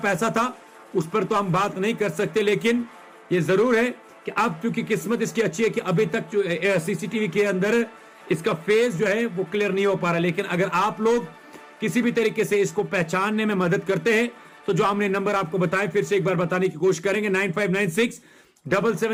था उस पर तो हम बात नहीं कर सकते, लेकिन ये जरूर है कि अब क्योंकि किस्मत इसकी अच्छी है कि अभी तक जो सीसीटीवी के अंदर इसका फेस जो है वो क्लियर नहीं हो पा रहा। लेकिन अगर आप लोग किसी भी तरीके से इसको पहचानने में मदद करते हैं, तो जो हमने नंबर आपको बताए फिर से एक बार बताने की कोशिश करेंगे,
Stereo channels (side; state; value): both; identical; correlation 1.00